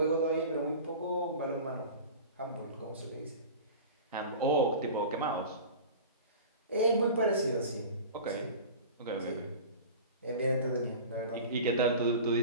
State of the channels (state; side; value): inverted; both; correlation -0.36